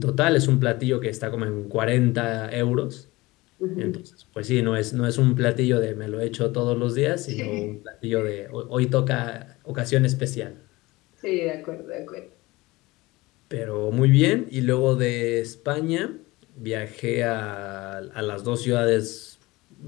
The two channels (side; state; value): right; quieter; 20.9 dB